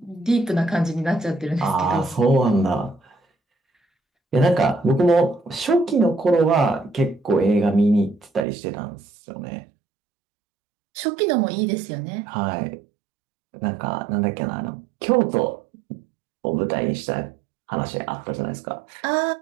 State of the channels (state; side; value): drops out; left; at 8.5 s